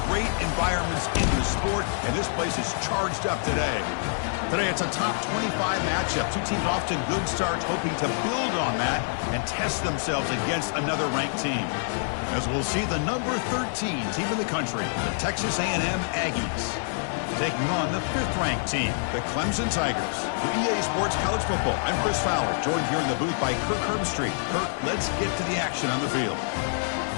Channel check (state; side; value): silent; right; 61 dB below the other